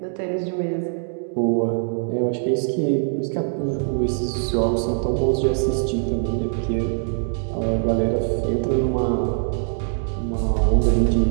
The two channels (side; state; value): left; silent; digital silence